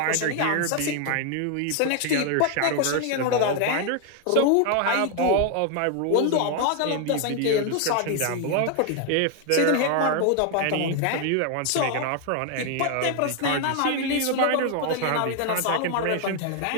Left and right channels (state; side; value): different; both; correlation 0.00